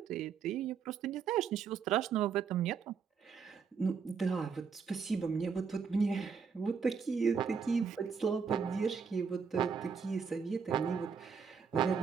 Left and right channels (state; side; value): quieter; left; 6.1 dB